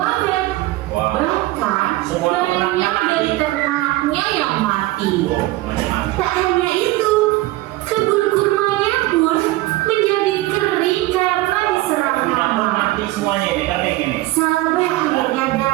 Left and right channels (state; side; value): quieter; left; 18.2 dB